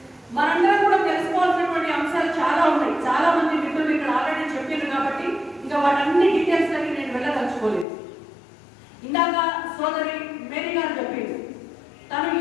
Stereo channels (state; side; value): drops out; right; at 7.9 s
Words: మనందరం కూడా తెలుసుకోవాల్సినటువంటి అంశాలు చాలా ఉన్నాయి. చాలా మంది మిత్రులు ఇక్కడ ఆల్రెడీ చెప్పారు కాబట్టి ఇంకా వాటన్ని డీటెయిల్స్ దగ్గర నేను వెళ్ళదలుచుకోలేదు. ఇందాక సోదరి మేరీ గారు చెప్పింది తను